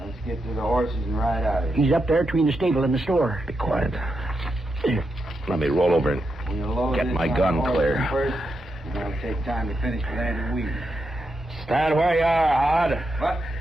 get to the horses and ride out of here. He's up there between the stable and the store. Be quiet. Here, let me roll over and We'll load get this my on gun the horse clear. First, and that'll take time to finish with Andy Weed. Stand where you are, Hod. What?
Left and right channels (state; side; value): normal; both; correlation 0.85